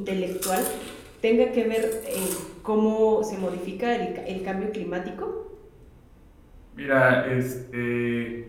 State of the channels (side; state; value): both; identical; correlation 1.00